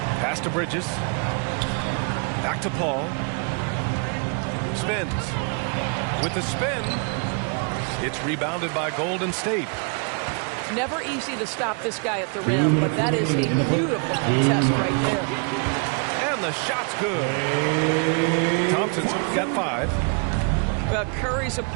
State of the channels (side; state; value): left; quieter; 38.4 dB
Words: Pass to Bridges. Back to Paul. Spins. With the spin, it's rebounded by Golden State. Never easy to stop this guy at the rim, but that is a beautiful contest right there. And the shot's good. Thompson's got 5. Curry's